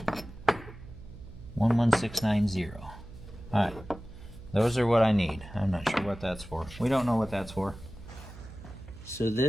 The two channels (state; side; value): noise; right; hum, 16 dB below the sound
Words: 11690. All right, those are what I need. I'm not sure what that's for. We don't know what that's for. So